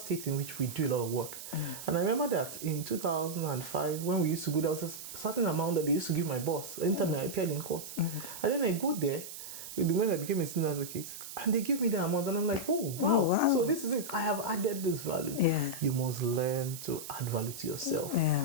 in which we do a lot of work. And I remember that in 2005, when we used to go, there was a certain amount that they used to give my boss anytime I appeared in court. And then I go there, when I became a senior advocate, and they give me the amount, and I'm like, oh, wow. So this is it. I have added this value. You must learn to add value to yourself.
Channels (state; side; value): noise; right; hiss, 11 dB below the sound